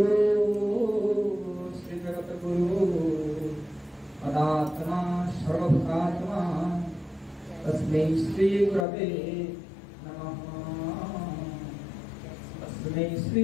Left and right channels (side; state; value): right; drops out; at 8.8 s